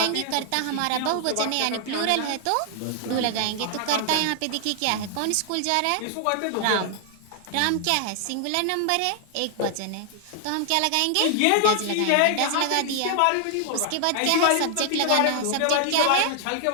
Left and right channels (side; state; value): both; different; correlation 0.00